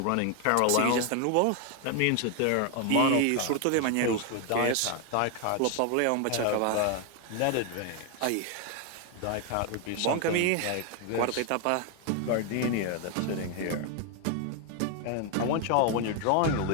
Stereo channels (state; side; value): different; both; correlation 0.01